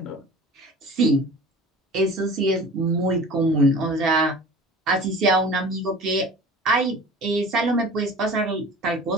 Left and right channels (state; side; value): normal; both; correlation 0.40